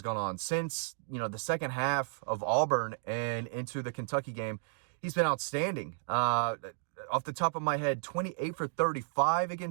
gone on. Since, the second half of Auburn and into the Kentucky game, he's been outstanding. Off the top of my head, 28 for 35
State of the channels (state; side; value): silent; left; digital silence